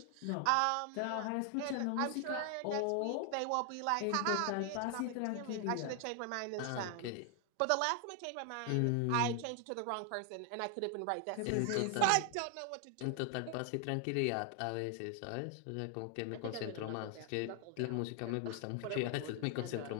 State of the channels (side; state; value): both; different; correlation 0.00